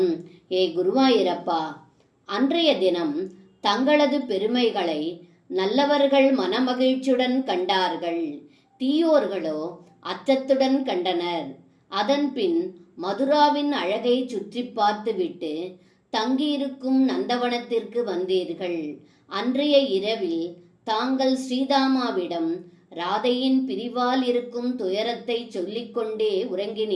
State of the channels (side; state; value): both; identical; correlation 1.00